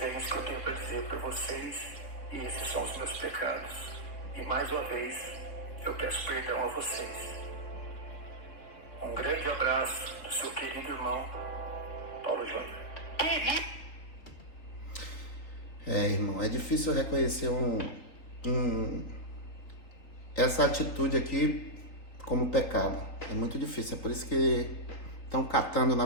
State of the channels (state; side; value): late; right; 4.0 ms